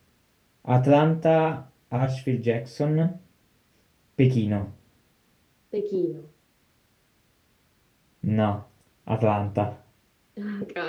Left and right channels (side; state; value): both; identical; correlation 1.00